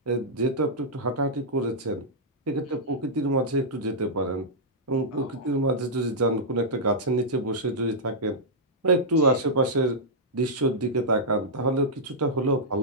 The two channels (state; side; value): normal; both; correlation -0.10